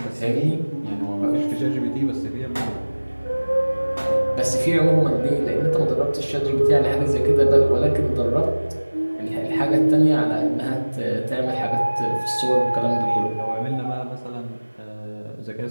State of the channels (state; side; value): inverted; both; correlation -1.00